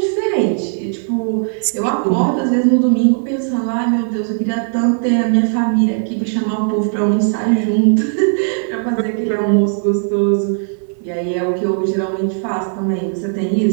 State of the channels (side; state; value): left; silent; 60 dB below the other